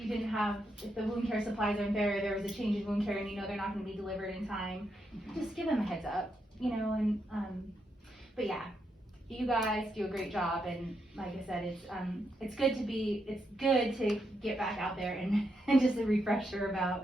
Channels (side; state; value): both; normal; correlation 0.82